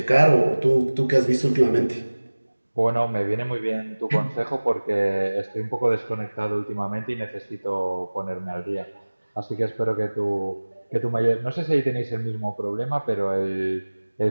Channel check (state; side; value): inverted; both; correlation -1.00